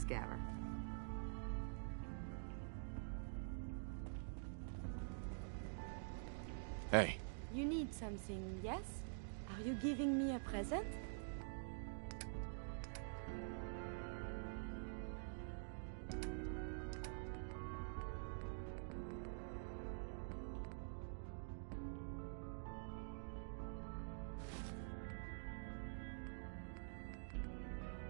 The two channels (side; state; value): left; silent; digital silence